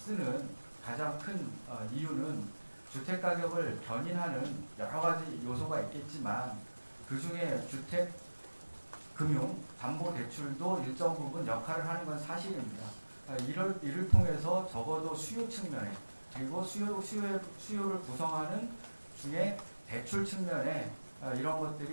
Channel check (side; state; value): both; inverted; correlation -1.00